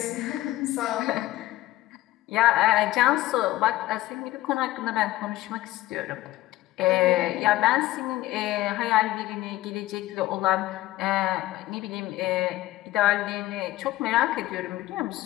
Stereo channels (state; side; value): quieter; right; 16.5 dB